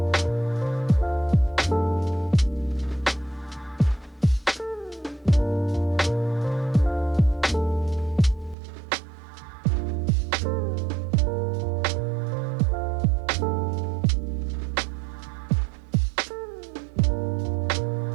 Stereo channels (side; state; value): left; drops out; at 8.6 s